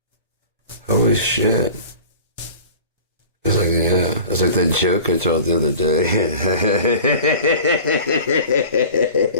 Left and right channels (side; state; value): both; inverted; correlation -0.41